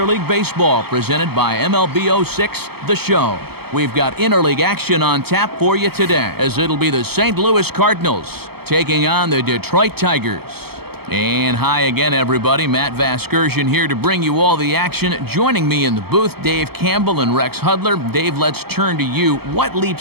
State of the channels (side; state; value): left; late; 0.96 ms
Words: League Baseball presented by MLB 06, The Show. We've got interleague action on tap for you today, as it'll be the St. Louis Cardinals taking on the Detroit Tigers. And hi again, everybody. Matt Vasgersian here to bring you all the action. Joining me in the booth, Dave Campbell and Rex Hudler. Dave, let's turn to you. What